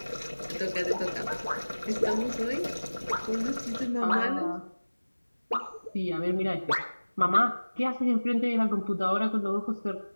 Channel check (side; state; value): both; inverted; correlation -1.00